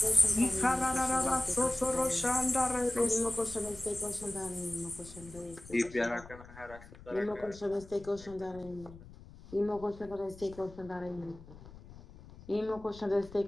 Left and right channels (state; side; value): noise; left; rumble, 18 dB below the sound